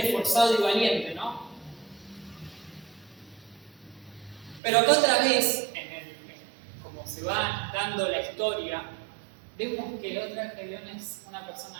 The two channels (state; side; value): drops out; left; at 4.6 s